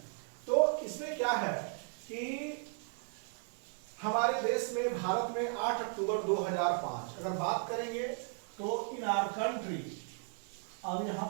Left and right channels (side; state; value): left; silent; 54 dB below the other